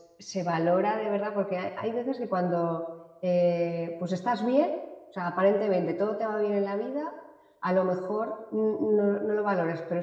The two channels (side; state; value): both; identical; correlation 1.00